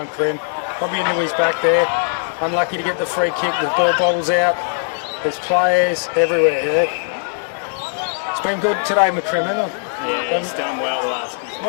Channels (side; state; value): right; silent; digital silence